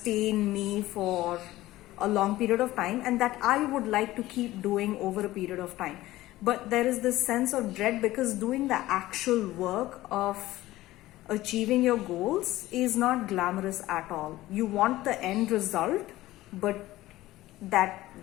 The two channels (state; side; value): quieter; right; 16.6 dB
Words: me for a long period of time and that I would like to keep doing over a period of time. But there is this sense of dread because doing the actual work of achieving your goals is not glamorous at all. You want the end result, but that